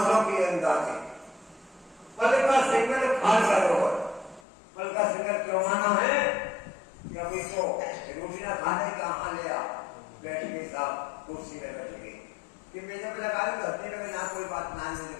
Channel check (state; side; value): drops out; right; at 4.4 s